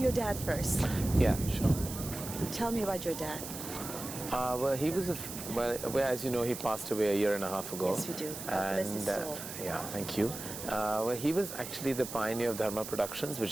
your dad first? Yeah, sure. Tell me about your dad. Well, he was well, as you know, he passed away a year and a half ago. Yes, we do. God bless his soul. Yeah, thank you. Well, he was actually the pioneer of Dharma Productions,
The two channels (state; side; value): noise; right; hiss, 9 dB below the sound